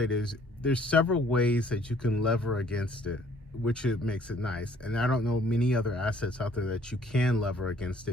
is there's several ways that you can lever against it, which it makes it nice. And I don't know many other assets out there that you can lever against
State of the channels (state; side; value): normal; both; correlation 0.60